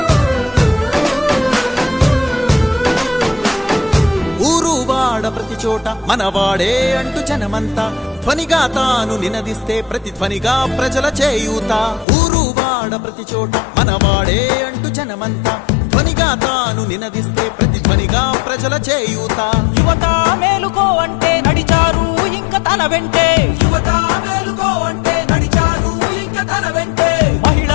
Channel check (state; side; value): drops out; right; at 12.1 s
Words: ప్రతి చోట మనవాడే అంటూ జనమంతా ధ్వనిగా తాను నినదిస్తే ప్రతిధ్వనిగా ప్రజల చేయూత ఊరు వాడ ప్రతి చోట మనవాడే అంటూ జనమంతా ధ్వనిగా తాను నినదిస్తే ప్రతిధ్వనిగా ప్రజల చేయూత యువత మేలుకో అంటే నడిచారు ఇంకా తన వెంటే యువత మేలుకో అంటే నడిచారు ఇంకా తన వెంటే